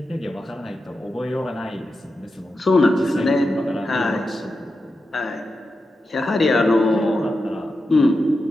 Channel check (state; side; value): normal; both; correlation 0.90